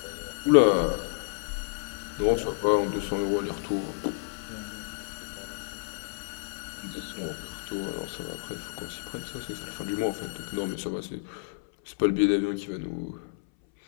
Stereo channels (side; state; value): right; silent; 58 dB below the other